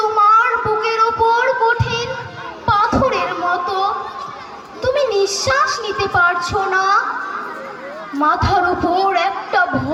তোমার বুকের ওপর কঠিন পাথরের মতো। তুমি নিঃশ্বাস নিতে পারছো না। মাথার উপর একটা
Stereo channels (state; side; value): identical; both; correlation 1.00